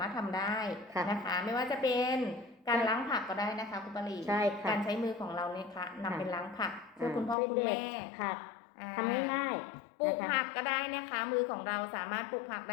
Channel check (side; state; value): right; drops out; at 7.4 s